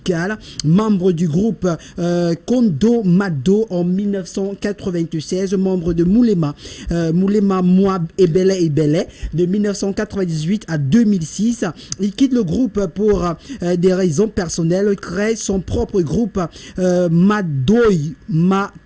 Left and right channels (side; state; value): both; identical; correlation 1.00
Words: membre du groupe Kondo Mado en 1996, membre de Moulema Moi Ebele de 1998 à 2006. Il quitte le groupe pour des raisons personnelles, crée son propre groupe Madoy